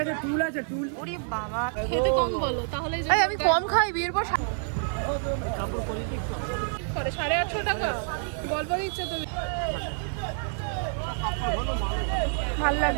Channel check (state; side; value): silent; left; 60 dB below the other